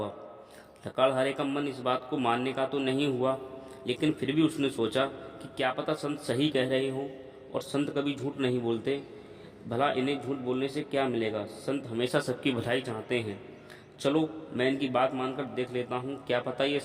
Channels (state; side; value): identical; both; correlation 1.00